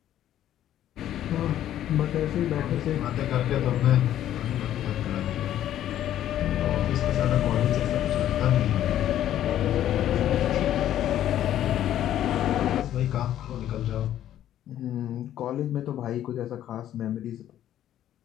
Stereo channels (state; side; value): quieter; right; 11.8 dB